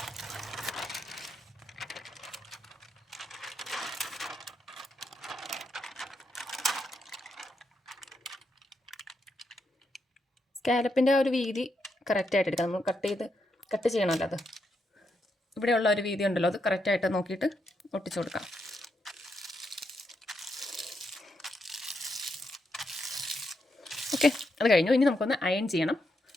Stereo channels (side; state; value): both; normal; correlation 0.81